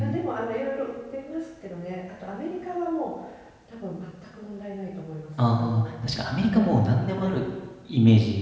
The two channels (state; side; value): identical; both; correlation 1.00